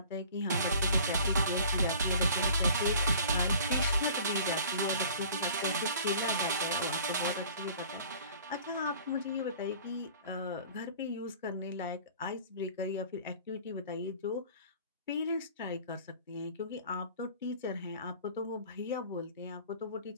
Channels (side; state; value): both; inverted; correlation -0.47